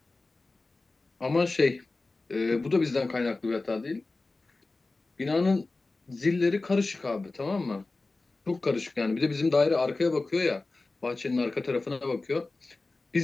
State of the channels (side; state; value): right; quieter; 3.4 dB